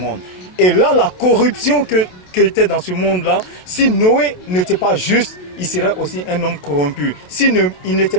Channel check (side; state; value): right; late; 27 ms